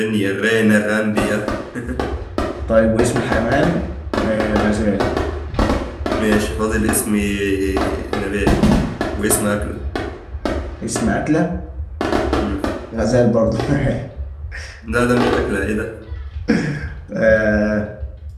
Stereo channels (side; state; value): both; identical; correlation 1.00